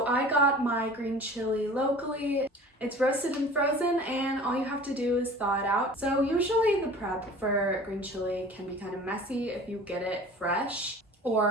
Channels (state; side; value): normal; both; correlation 0.43